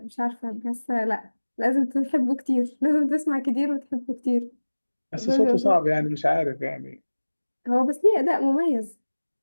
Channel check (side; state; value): both; inverted; correlation -1.00